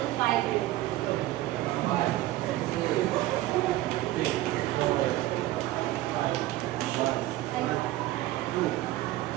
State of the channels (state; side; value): quieter; left; 16.1 dB